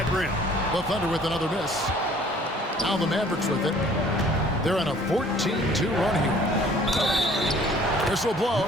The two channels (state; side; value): normal; both; correlation 0.55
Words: rim. The Thunder with another miss. Now the Mavericks with it. They're on a 14-2 run here. Whistle